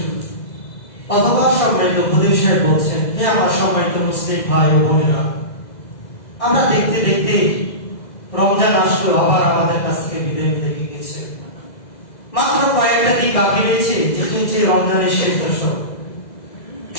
অথবা সম্মানিত উপদেশ সাহেব বলছেন, হে আমার সম্মানিত মুসলিম ভাই ও বোনেরা, আমরা দেখতে দেখতে রমজান আসলো, আবার আমাদের কাছ থেকে বিদায় নিতে গেছে। মাত্র কয়েকটা দিন বাকি রয়েছে, যেটি হচ্ছে রমজানের শেষ দশক।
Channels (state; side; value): late; right; 2.0 ms